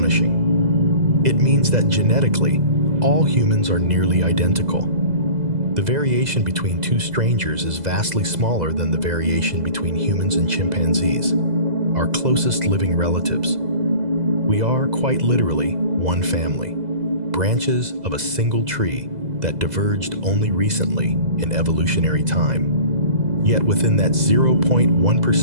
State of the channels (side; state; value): left; late; 2.0 ms